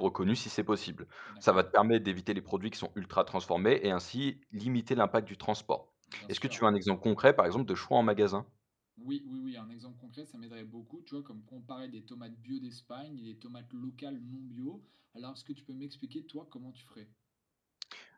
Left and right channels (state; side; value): identical; both; correlation 1.00